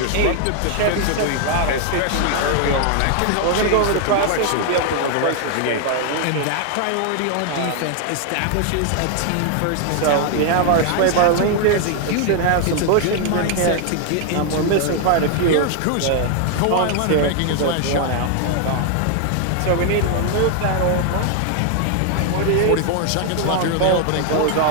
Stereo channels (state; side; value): different; both; correlation 0.00